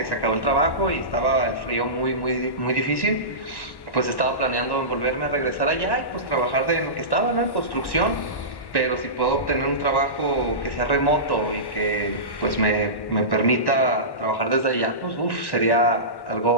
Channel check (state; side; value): late; right; 1.1 ms